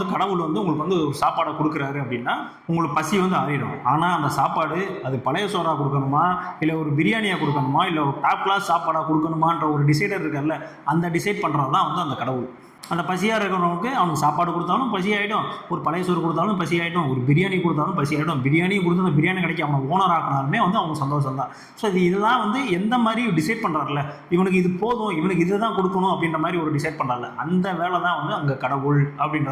கடவுள் வந்து உங்களுக்கு வந்து ஒரு சாப்பாடை கொடுக்குறாரு அப்படின்னா உங்களுக்கு பசி வந்து ஆறிடும். ஆனால் அந்த சாப்பாடு அது பழைய சோறாக கொடுக்கணுமா, இல்லை ஒரு பிரியாணியாக கொடுக்கணுமா, இல்லை ஒரு டாப் கிளாஸ் சாப்பாடாக கொடுக்கணுமான்ற ஒரு டிசைடர் இருக்கார்ல, அந்த டிசைட் பண்ணுறது தான் வந்து அந்த கடவுள். அந்த பசியாக இருக்கிறவனுக்கு அவனுக்கு சாப்பாடு கொடுத்தாலும் பசி ஆகிடும், ஒரு பழைய சோறு கொடுத்தாலும் பசி ஆகிடும், ஒரு பிரியாணி கொடுத்தாலும் பசி ஆகிடும். பிரியாணி கொடுத்து அந்த பிரியாணி கடைக்கு அவனை ஓனர் ஆக்கினாலுமே வந்து அவனுக்கு சந்தோஷம் தான். ஸோ இதெல்லாம் வந்து எந்த மாதிரி டிசைட் பண்ணுறாருல, இவனுக்கு இது போதும், இவனுக்கு இதை தான் கொடுக்கணும் அப்படின்ற மாதிரி ஒரு டிசைட் பண்ணுறாருல, அந்த வேலை தான் வந்து அங்கே கடவுள் அப்படின்ற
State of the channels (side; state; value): both; identical; correlation 1.00